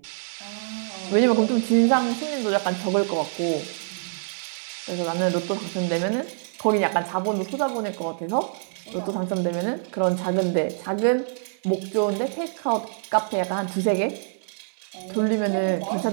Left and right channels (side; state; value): left; silent; 62 dB below the other